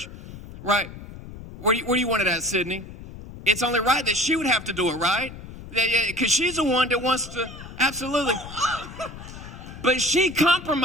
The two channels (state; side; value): noise; left; rumble, 14 dB below the sound